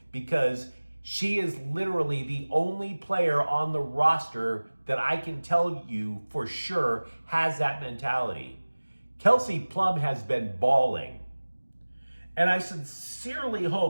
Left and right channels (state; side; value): inverted; both; correlation -1.00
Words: because she is literally the only player on the roster that I can tell you for sure has that mentality. Kelsey Plum has been bawling. And I sincerely